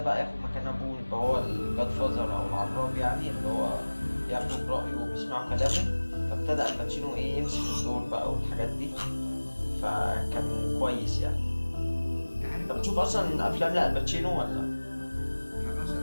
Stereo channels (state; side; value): inverted; both; correlation -1.00